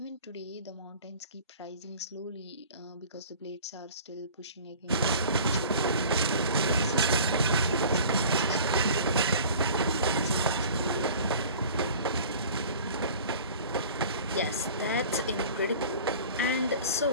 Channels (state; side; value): inverted; both; correlation -0.44